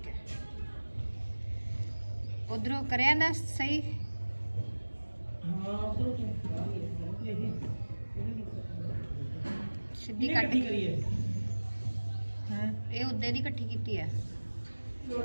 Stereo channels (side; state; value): both; inverted; correlation -1.00